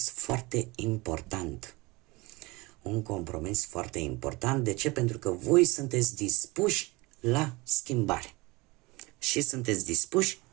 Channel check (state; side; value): quieter; left; 23.5 dB